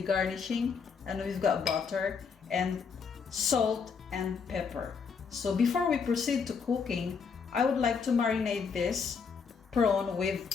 garnishing, and we've got butter and salt and pepper. So before we proceed to cooking, I would like to marinate this prawn with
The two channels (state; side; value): quieter; right; 5.8 dB